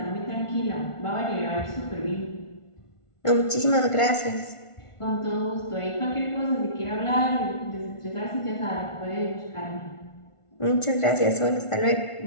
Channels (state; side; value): late; right; 1.5 ms